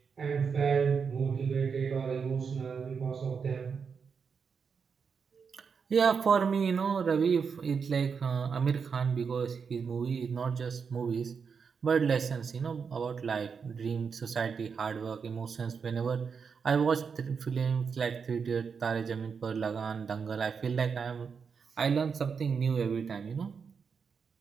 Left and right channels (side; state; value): left; quieter; 6.0 dB